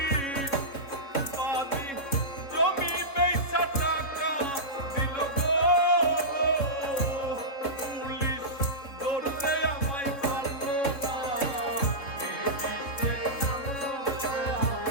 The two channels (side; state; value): right; late; 3.7 ms